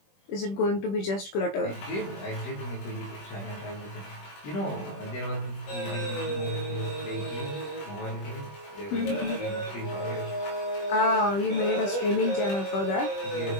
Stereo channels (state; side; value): late; right; 20 ms